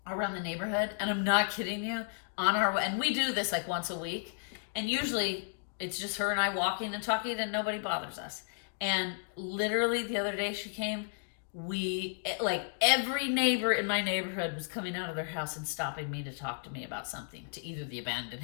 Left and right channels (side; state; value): right; silent; digital silence